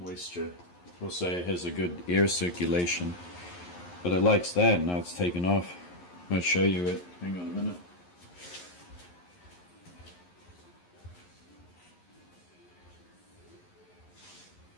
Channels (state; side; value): late; right; 11 ms